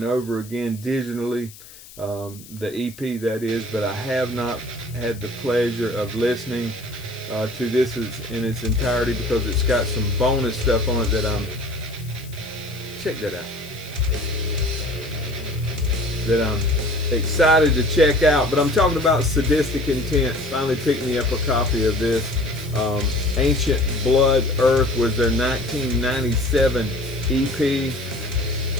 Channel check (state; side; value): noise; left; hiss, 20 dB below the sound